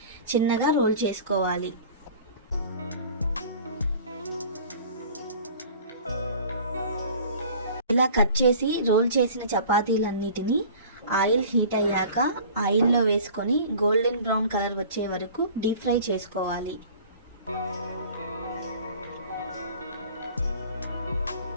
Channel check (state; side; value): inverted; both; correlation -0.45